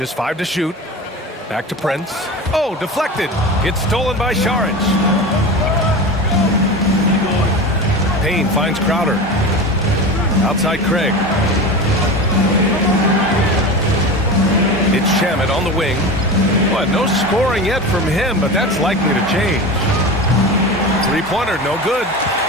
5 to shoot. Back to Prince. Oh, deflected. It's stolen by Saric. Payne finds Crowder. Outside Craig. It's Shamet on the wing. Well, no scoring yet from him, but that's likely to change. Three-pointer, no good.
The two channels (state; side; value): normal; both; correlation 0.28